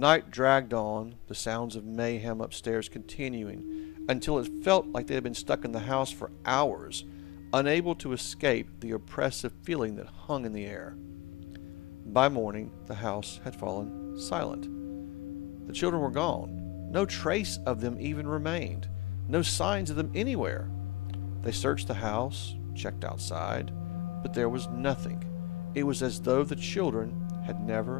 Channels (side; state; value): right; quieter; 19.1 dB